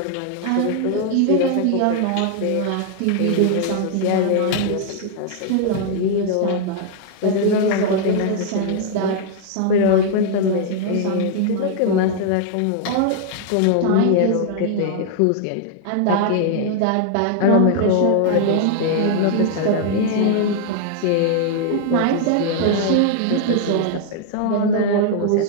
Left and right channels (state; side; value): different; both; correlation 0.00